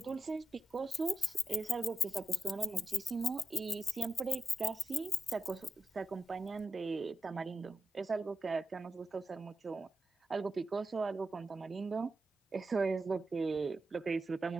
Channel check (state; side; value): normal; both; correlation 0.89